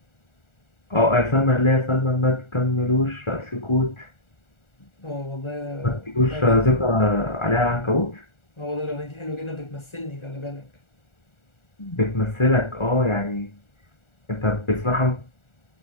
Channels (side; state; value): right; late; 1.4 ms